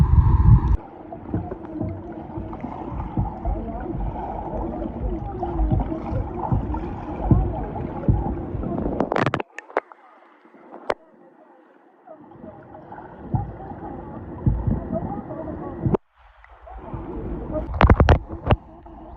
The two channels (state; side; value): identical; both; correlation 1.00